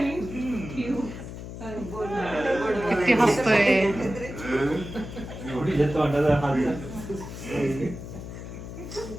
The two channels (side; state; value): left; noise; hum, 10 dB below the sound